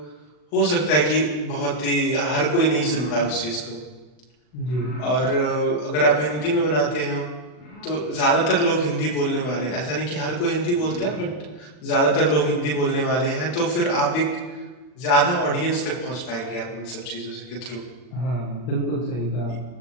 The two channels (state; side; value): late; right; 40 ms